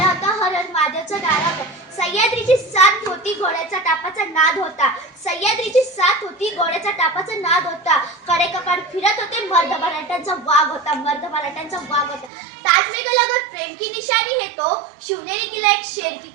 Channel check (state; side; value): drops out; left; at 12.3 s